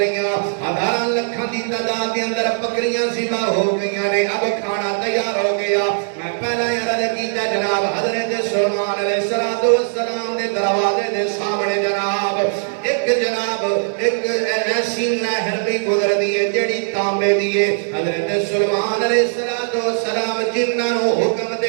1000 لکھاں دی تعداد دے اندر بکریاں ذبح ہو گئیاں نے، اب کھانا تیار ہو گیا۔ میں پہلا عرض کیتا جناب حضرت سلیمان علیہ السلام دے دروازے دے سامنے جناب ایک ایسی نہر بھی گزر دیئے جڑی تانبے دیئے، حضرت سلیمان علیہ السلام جنہاں نو حکم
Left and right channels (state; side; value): silent; left; digital silence